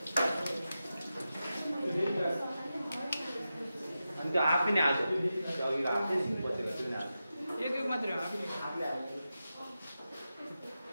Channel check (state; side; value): inverted; both; correlation -0.91